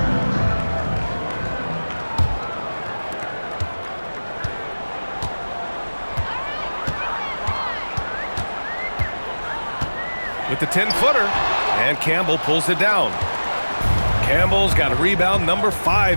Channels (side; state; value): both; inverted; correlation -1.00